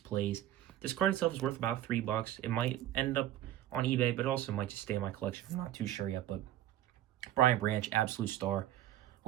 This card itself is worth about $3. It might end up on eBay, but it also might just stay in my collection. I'm not too sure yet, but Brian Branch, absolute star.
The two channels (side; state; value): left; quieter; 13.0 dB